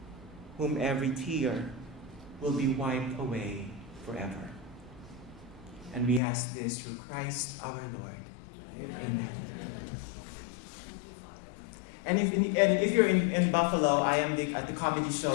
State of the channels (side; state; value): right; drops out; at 6.2 s